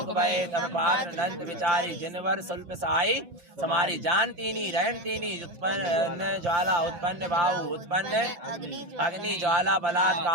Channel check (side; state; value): left; late; 5.8 ms